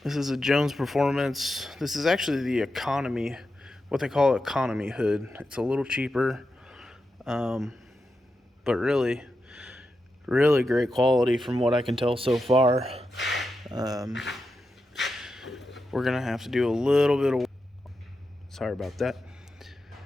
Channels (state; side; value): normal; both; correlation 0.88